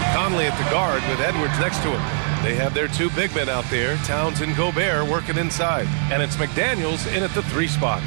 Conley at the guard with Edwards next to him. They have their two big men out there, Towns and Gobert, working inside. And it's McDaniels in at the 3 spot.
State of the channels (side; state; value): left; silent; digital silence